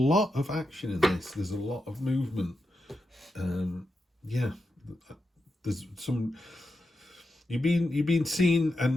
of action in this. There's a lot of movement. Yeah, there's some. You've been seen,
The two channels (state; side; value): normal; both; correlation 0.87